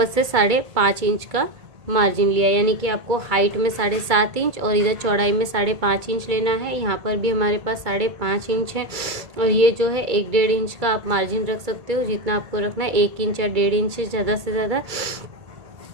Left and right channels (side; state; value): left; late; 2.2 ms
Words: से 5.5 इंच का मार्जिन लिया, यानी कि आपको हाइट में 7.5 इंच और इधर चौड़ाई में 5.5 इंच लेना है। यहाँ पर भी हमारे पास 5.5 इंच है और ये जो है 1-1.5 इंच का आप मार्जिन रख सकते हो, जितना आपको रखना है। 1 इंच या 1.5 इंच से ज़्यादा।